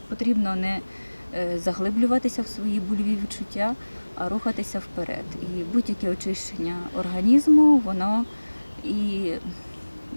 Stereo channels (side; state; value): both; inverted; correlation -1.00